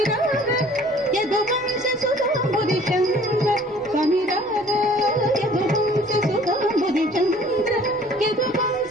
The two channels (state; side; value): normal; both; correlation 0.53